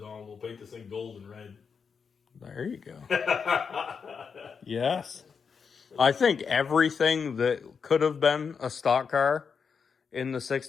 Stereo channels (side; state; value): right; quieter; 6.0 dB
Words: We'll paint this thing gold and red. There you go. Yes. I think everything that could have been a stock car in the